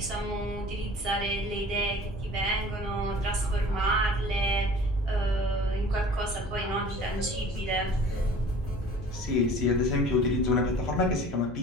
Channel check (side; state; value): right; noise; hum, 15 dB below the sound